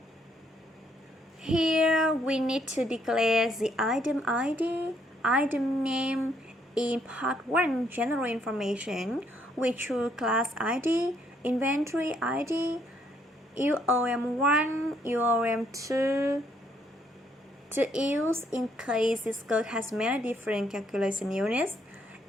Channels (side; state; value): both; normal; correlation 0.70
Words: Here, we need to declare the item ID, item name. In part 1, general information, we choose class ID, inventory ID, UOM1, UOM2, to use in case this code has many different calculation units.